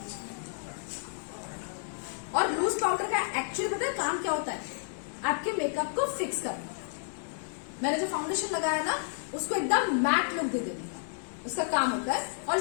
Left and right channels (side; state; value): right; silent; digital silence